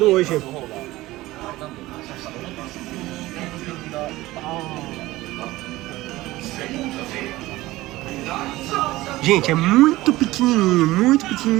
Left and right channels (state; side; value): quieter; left; 18.0 dB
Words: hoje. Gente, é muito